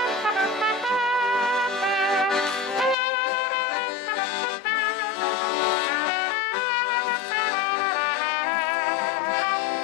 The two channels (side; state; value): right; drops out; at 3.0 s